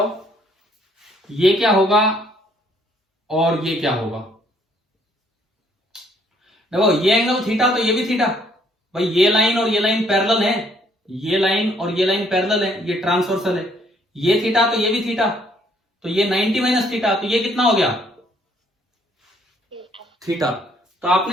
ये क्या होगा और ये क्या होगा? देखो ये एंगल थीटा, तो ये भी थीटा भाई। ये लाइन और ये लाइन पैरेलल है, ये लाइन और ये लाइन पैरेलल है, ये ट्रांसवर्सल है। ये थीटा तो ये भी थीटा, तो ये 90 माइनस थीटा, तो ये कितना हो गया? थीटा। तो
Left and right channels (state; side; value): normal; both; correlation 0.66